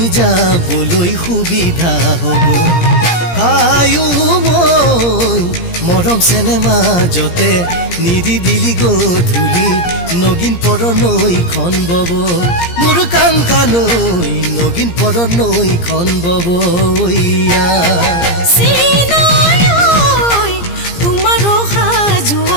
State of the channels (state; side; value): late; right; 17 ms